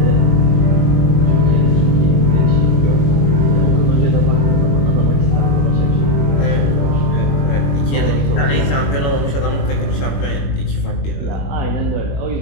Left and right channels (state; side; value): late; right; 21 ms